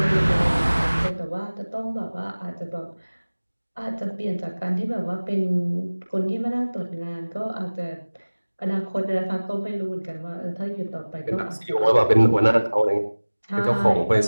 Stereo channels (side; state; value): both; inverted; correlation -1.00